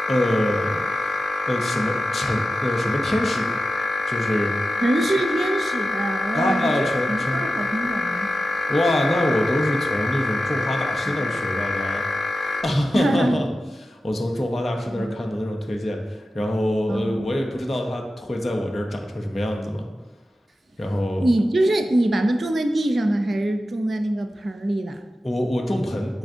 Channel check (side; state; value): both; normal; correlation 0.93